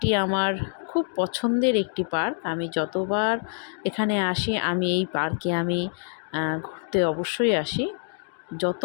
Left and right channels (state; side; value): silent; right; digital silence